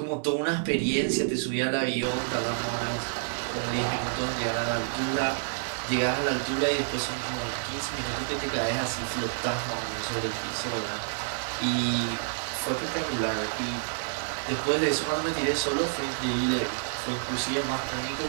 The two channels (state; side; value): silent; left; 59 dB below the other